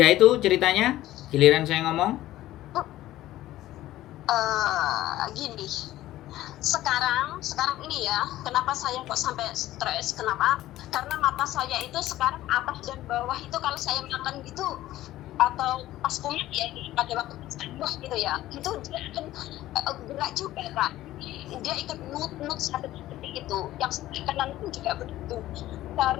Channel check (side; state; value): right; quieter; 15.0 dB